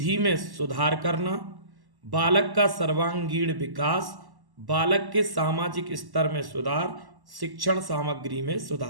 में सुधार करना, बालक का सर्वांगीण विकास, बालक के सामाजिक स्तर में सुधार, शिक्षण सामग्री में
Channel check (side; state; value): left; late; 1.1 ms